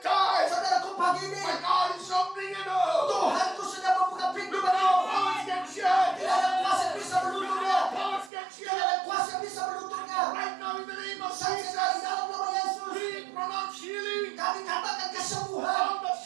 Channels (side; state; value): left; drops out; at 8.3 s